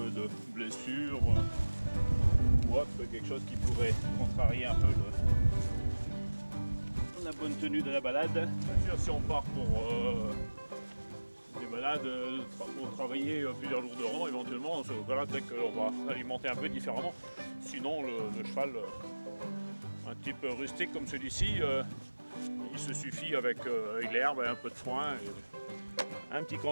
de blessure ou autre, quelque chose qui pourrait contrarier un peu la bonne tenue de la balade. Bien sûr, si on part pour des balades pour travailler plusieurs jours de rang, éventuellement, voilà, peut-être qu'on va alimenter un peu différemment. Sinon, le cheval, un type rustique comme celui-ci, il se suffit avec l'herbe et un peu de foin. Et un petit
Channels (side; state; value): both; inverted; correlation -1.00